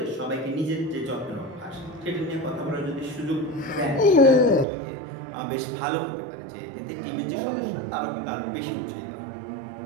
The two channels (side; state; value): left; drops out; at 4.7 s